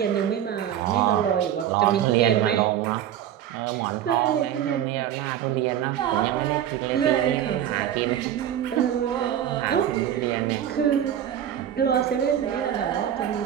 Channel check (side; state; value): left; quieter; 10.5 dB